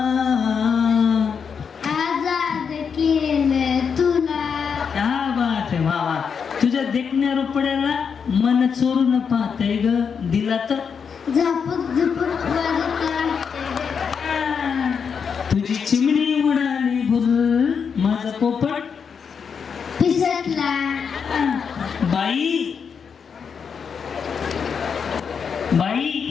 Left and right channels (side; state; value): right; quieter; 6.4 dB